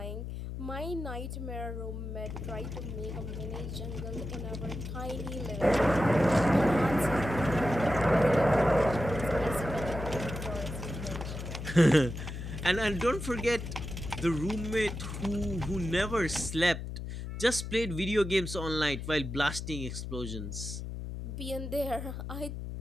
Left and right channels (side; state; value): left; noise; hum, 7 dB below the sound